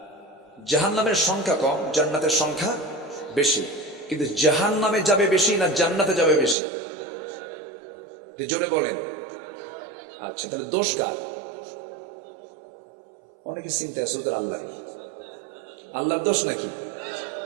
জাহান্নামের সংখ্যা কম, জান্নাতের সংখ্যা বেশি। কিন্তু জাহান্নামে যাবে বেশি না জান্নাতে যাবে বেশি? জোরে বলেন। আচ্ছা, তাহলে দোষ কার? অনেকে চিন্তা আছে ওদের আল্লাহরই। আল্লাহর দোষ নাকি?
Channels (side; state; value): left; drops out; at 6.6 s